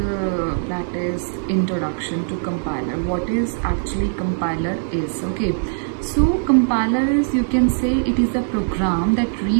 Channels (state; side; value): silent; left; 65 dB below the other